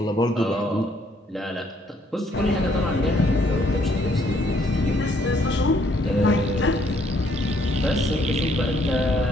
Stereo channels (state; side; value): normal; both; correlation 0.67